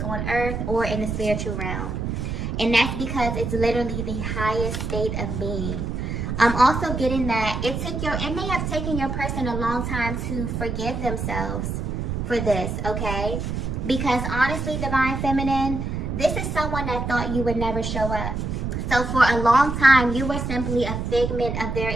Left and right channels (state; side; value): noise; right; rumble, 3 dB below the sound